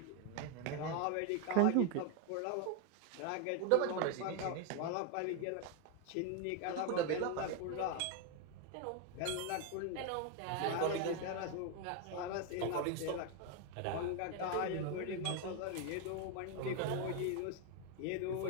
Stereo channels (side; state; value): both; different; correlation 0.01